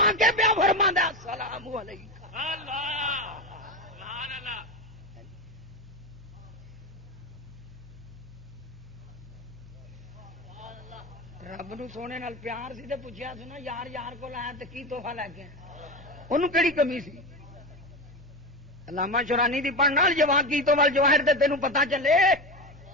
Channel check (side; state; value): both; normal; correlation 0.20